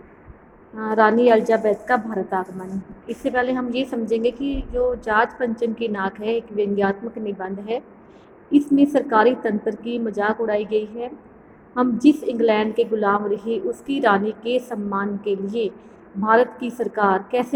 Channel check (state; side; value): identical; both; correlation 1.00